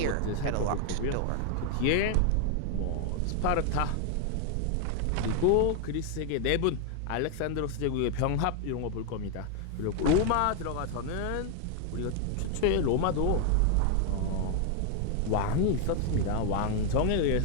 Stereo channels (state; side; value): different; both; correlation 0.00